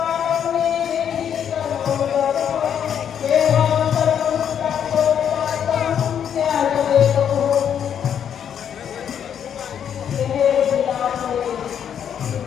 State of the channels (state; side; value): quieter; right; 8.7 dB